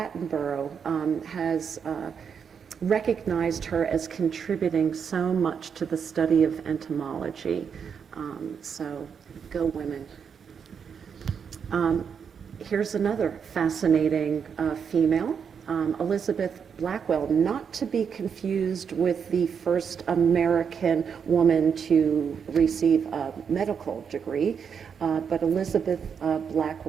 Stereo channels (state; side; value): quieter; left; 6.9 dB